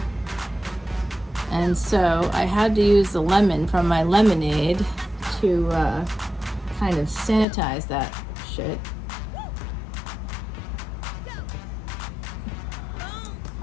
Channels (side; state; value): right; drops out; at 7.5 s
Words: and so I had to use the lemon from my lemonade to kind of sanitize that shit.